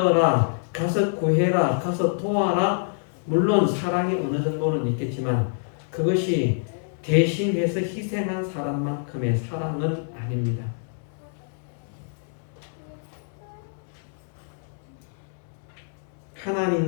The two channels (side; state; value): right; silent; digital silence